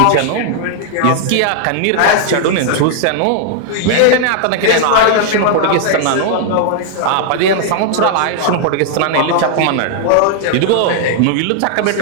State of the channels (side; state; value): both; different; correlation 0.00